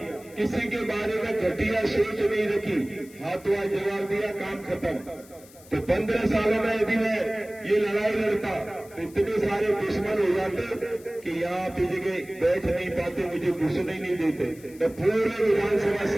किसी के बारे में घटिया सोच नहीं रखी, हाथों जवाब दिया, काम खत्म। तो 15 सालों में यदि मैं ये लड़ाई लड़ता तो इतने सारे दुश्मन हो जाते कि यहाँ पे जगह बैठ नहीं पाते, मुझे घुसने नहीं देते। मैं पूरे विधानसभा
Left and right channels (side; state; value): left; noise; hiss, 23 dB below the sound